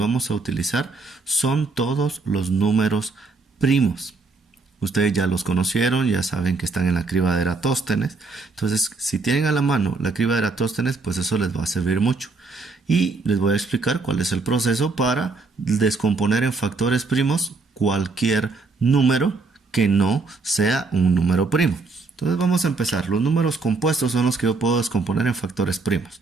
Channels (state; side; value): quieter; left; 4.0 dB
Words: a utilizar son todos los números primos. Ustedes ya los conocieron, ya saben que están en la criba de Eratóstenes. Entonces, si tienen a la mano la criba de Eratóstenes, pues eso les va a servir mucho. Y les voy a explicar cuál es el proceso para descomponer en factores primos cualquier número que no sea un número primo. Entonces vamos a empezar. Los números compuestos son los que yo puedo descomponer en factores primos.